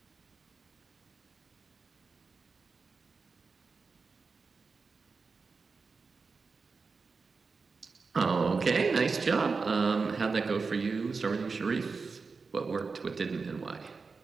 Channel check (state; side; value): quieter; left; 4.6 dB